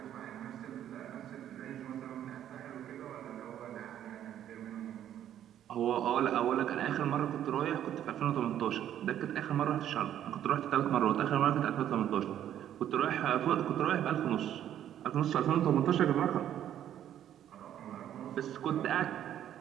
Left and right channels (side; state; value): left; quieter; 10.9 dB